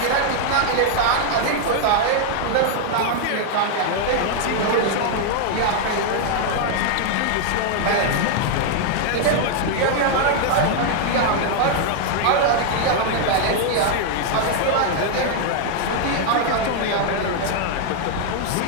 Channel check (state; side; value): different; both; correlation 0.00